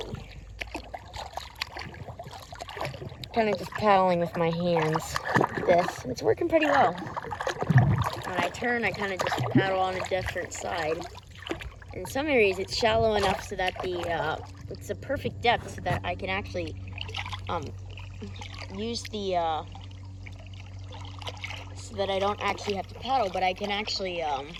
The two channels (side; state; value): both; identical; correlation 1.00